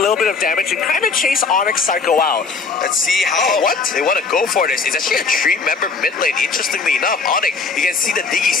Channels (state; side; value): quieter; right; 4.6 dB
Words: bit of damage and kind of chase Onyx Psycho out. Let's see how they want to go for this. It's actually a 3-member mid lane. Interestingly enough, Onyx, you can see the Diggy